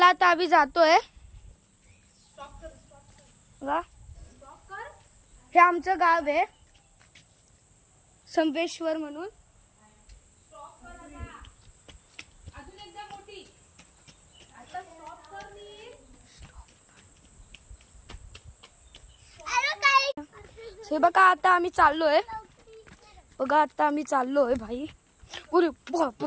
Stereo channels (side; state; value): both; identical; correlation 1.00